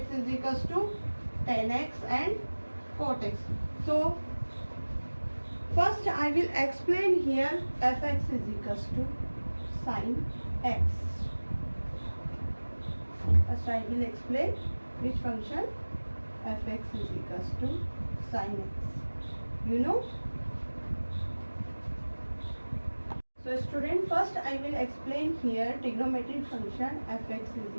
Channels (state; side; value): inverted; both; correlation -1.00